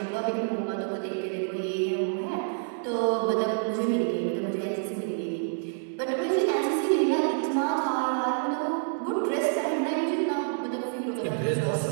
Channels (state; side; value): silent; left; digital silence